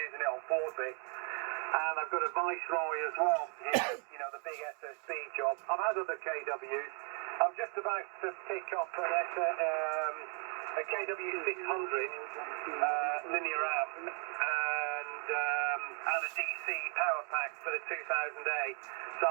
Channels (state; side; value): quieter; left; 38.2 dB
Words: it on 40. And I've got a Viceroy as well, you know, the big SSB job. I've had other KWs. I'm just about to pick up a KW 600 linear amp and a DC power pack for the 2000A. So